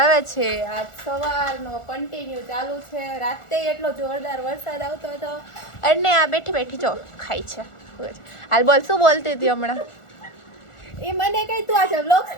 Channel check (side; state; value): right; late; 1.4 ms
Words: છે. આજ સવારનો કન્ટિન્યુ ચાલુ છે. રાતે એટલો જોરદાર વરસાદ આવતો હતો. અને આ બેઠી બેઠી જો ખાય છે. હાલ બોલ, શું બોલતી હતી હમણાં? એ મને કઈ તું આજે વ્લોગ